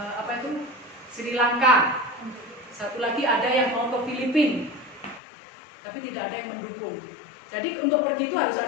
Sri Lanka. 1 lagi ada yang mau ke Filipina, tapi tidak ada yang mendukung. Jadi untuk pergi itu harus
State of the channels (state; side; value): drops out; right; at 5.2 s